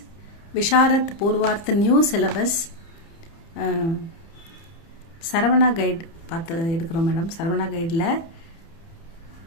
Visharat Purvarth new syllabus Saravana guide பார்த்து எடுக்கிறோம் madam. Saravana கைடில்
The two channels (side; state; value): right; late; 30 ms